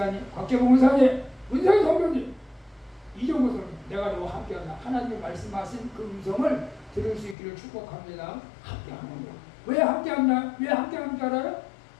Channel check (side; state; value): right; drops out; at 7.4 s